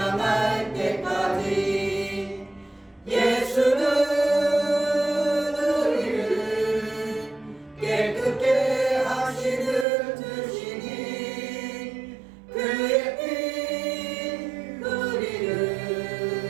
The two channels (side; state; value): left; drops out; at 9.9 s